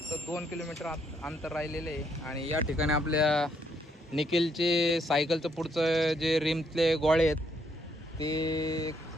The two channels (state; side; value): normal; both; correlation 0.72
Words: 2 किलोमीटर अंतर राहिलेले आहे. आणि या ठिकाणी आपल्या निखिलचे सायकलचं पुढचं जे रिमतले गोळे आहेत ते